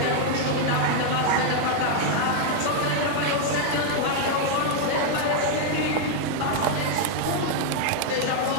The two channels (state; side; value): different; both; correlation 0.00